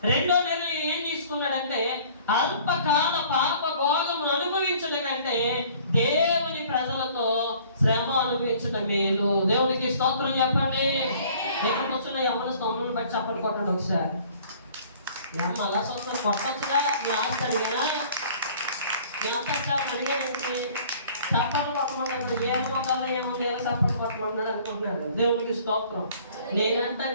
రెండో నిర్ణయం ఏం తీసుకున్నాడంటే అల్పకాల పాప భోగమును అనుభవించడం కంటే దేవుని ప్రజలతో శ్రమ అనుభవించడం మేలు. దేవునికి స్తోత్రం చెప్పండి. నేను కూర్చున్న యవ్వన స్తోత్రం బట్టి చప్పట్లు కొట్టండి ఒకసారి. అమ్మ అలా స్తోత్రం కొట్టొచ్చుగా, మీ ఆస్తాడు కదా, మీ అంతా అడిగానండి. చప్పట్లు కొట్టమన్నాడు, ఏమవుతారో ఏముంది, చప్పట్లు కొట్టమన్నాడు అనుకుంటున్నాడు. దేవునికి స్తోత్రం. నేనంతా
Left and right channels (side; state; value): both; inverted; correlation -0.53